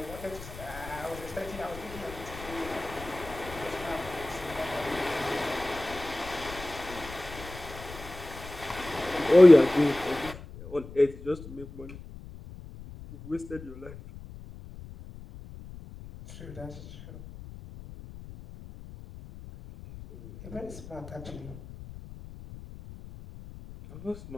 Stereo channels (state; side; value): noise; left; rumble, 15 dB below the sound